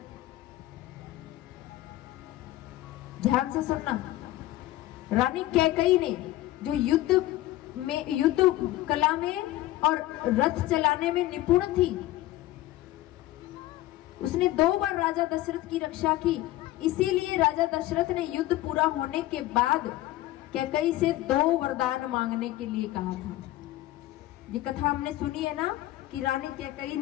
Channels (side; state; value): right; quieter; 16.0 dB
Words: ध्यान से सुनना, रानी कैकेयी ने जो युद्ध कला में और रथ चलाने में निपुण थी, उसने 2 बार राजा दशरथ की रक्षा की। इसीलिए राजा दशरथ ने युद्ध पूरा होने के बाद कैकेयी से 2 वरदान मांगने के लिए कहा था। ये कथा हमने सुनी है ना कि रानी कैकेयी